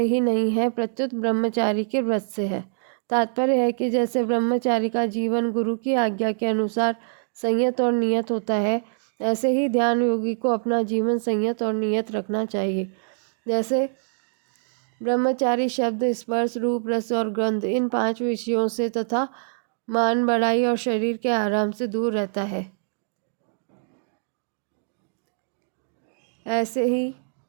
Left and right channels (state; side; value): silent; left; digital silence